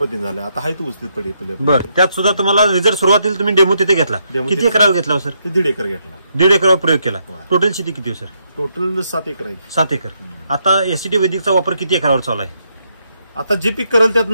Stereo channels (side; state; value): both; inverted; correlation -0.77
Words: झाला. आता हाय तो ऊस पडले. बरं, त्यात सुद्धा तुम्हाला रिझल्ट सुरुवातीला तुम्ही डेमो तिथे घेतला. किती एकरावर घेतला सर? 1.5 एकर घेतला. 1.5 एकरावर प्रयोग केला. टोटल शेती किती सर? टोटल 7 एकर आहे. 7 एकर. आता एससीटी वैदिकचा वापर किती एकरावर चालू आहे? आता जे पीक करेल त्यात